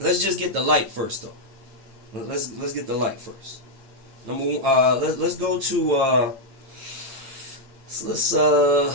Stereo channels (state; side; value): late; left; 8.7 ms